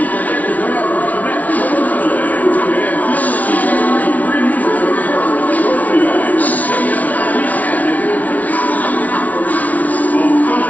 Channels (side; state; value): right; late; 0.072 ms